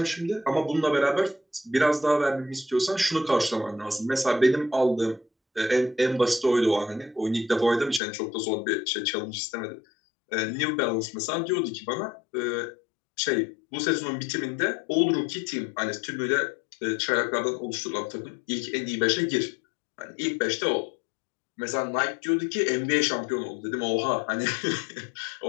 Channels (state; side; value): drops out; right; at 8.0 s